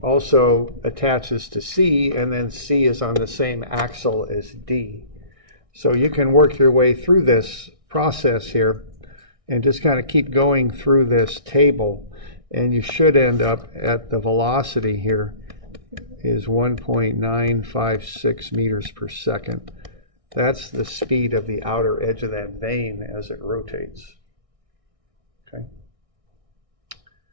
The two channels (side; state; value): left; late; 1.6 ms